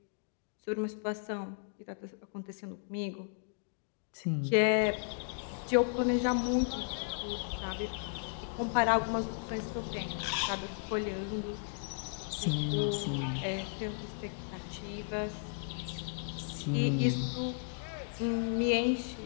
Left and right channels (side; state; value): right; silent; digital silence